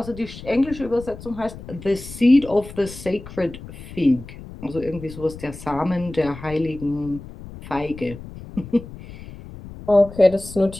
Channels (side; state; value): left; noise; rumble, 14 dB below the sound